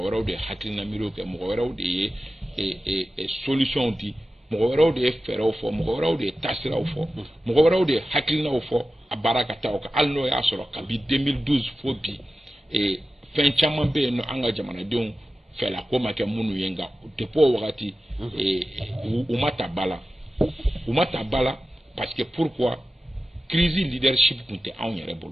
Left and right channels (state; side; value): normal; both; correlation 0.94